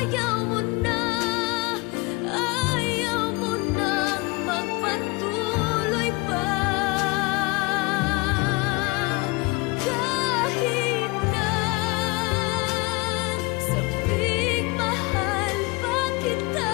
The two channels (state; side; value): quieter; right; 26.7 dB